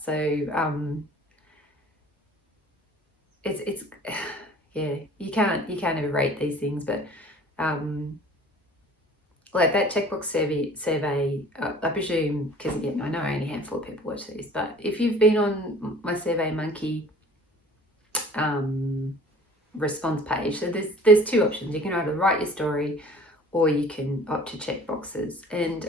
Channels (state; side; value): normal; both; correlation 0.48